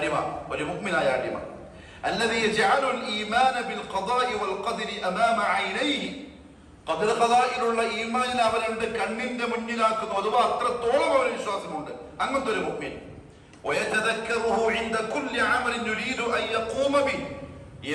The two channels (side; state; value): both; identical; correlation 1.00